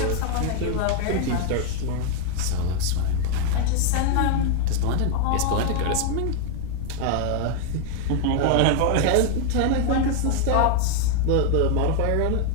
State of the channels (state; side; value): different; both; correlation 0.01